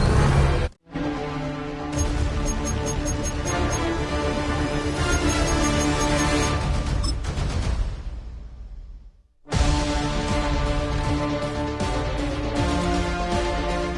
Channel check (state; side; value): identical; both; correlation 1.00